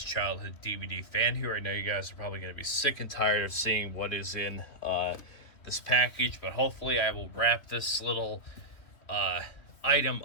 Childhood DVD Fan here. I know you guys are probably going to be sick and tired of seeing what is in this package, but hopefully I will wrap this little item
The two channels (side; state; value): right; late; 2.8 ms